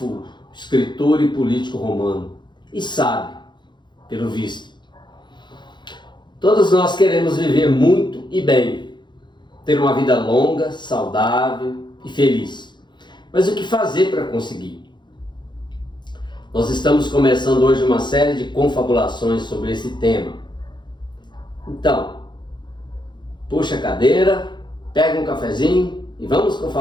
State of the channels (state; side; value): late; right; 0.22 ms